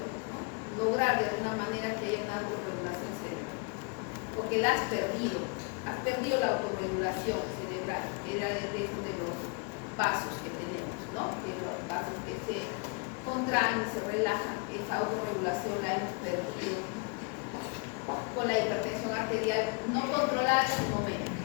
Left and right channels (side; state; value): right; quieter; 32.2 dB